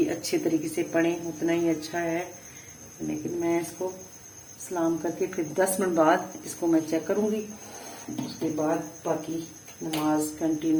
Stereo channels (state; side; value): identical; both; correlation 1.00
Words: अच्छे तरीके से पढ़ें उतना ही अच्छा है, लेकिन मैं इसको सलाम करके फिर 10 मिनट बाद इसको मैं चेक करूँगी। उसके बाद बाकी नमाज